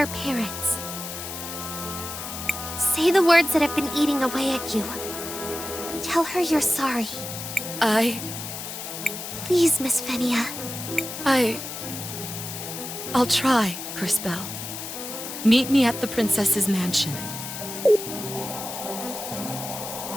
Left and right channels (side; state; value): left; noise; hiss, 8 dB below the sound